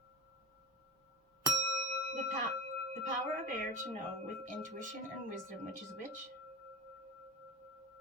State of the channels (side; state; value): both; normal; correlation 0.29